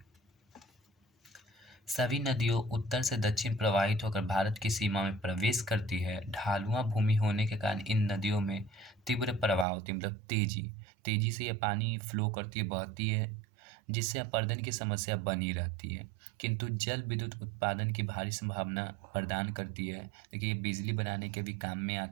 सभी नदियों उत्तर से दक्षिण प्रवाहित होकर भारत की सीमा में प्रवेश करती है। ढालुआ भूमि होने के कारण इन नदियों में तीव्र प्रवाह होती है, मतलब तेजी से ये पानी फ्लो करती है, बहती है, जिससे अपर्दन की समस्या बनी रहती है। किंतु जल विद्युत उत्पादन की भारी संभावना प्रदान करती है। देखिए, ये बिजली बनाने के भी काम में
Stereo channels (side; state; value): left; drops out; at 9.7 s